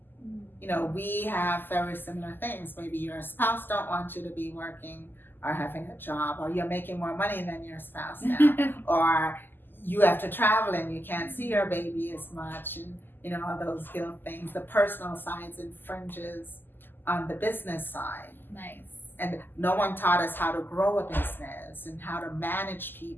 You know, we have very similar things. Maybe your spouse don't want you to be working or having a job, or you're making more money than your spouse now, or you have to travel and you can't see your baby as much, and you know, all those guilt things. The personal sides infringes on the business side. Nice. And no one taught us how to grow a business and how to manage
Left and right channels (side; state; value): right; late; 0.093 ms